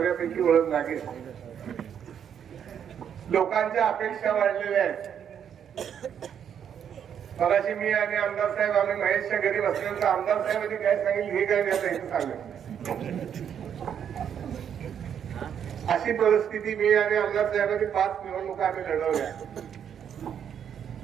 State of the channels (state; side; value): quieter; left; 8.5 dB